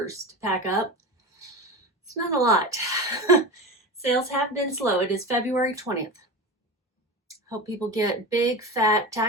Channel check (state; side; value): normal; both; correlation 0.26